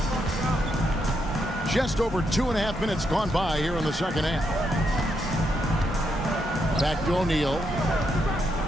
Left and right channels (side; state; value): both; normal; correlation 0.79